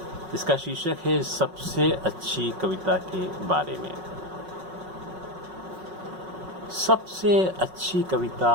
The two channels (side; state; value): left; late; 5.4 ms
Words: इसका शीर्षक है सबसे अच्छी कविता के बारे में। सबसे अच्छी कविता